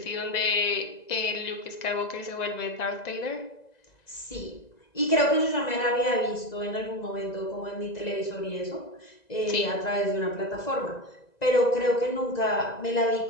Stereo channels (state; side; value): late; right; 2.0 ms